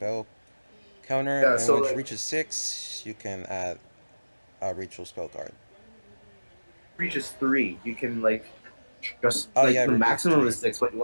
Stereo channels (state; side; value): inverted; both; correlation -1.00